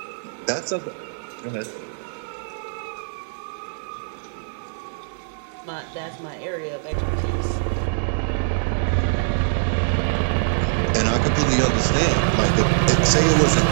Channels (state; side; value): silent; left; digital silence